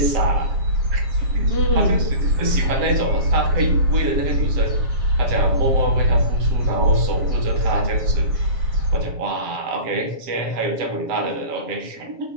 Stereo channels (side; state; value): left; late; 7.4 ms